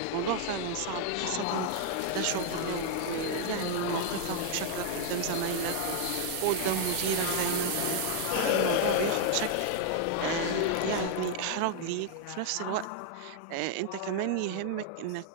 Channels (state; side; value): different; both; correlation 0.00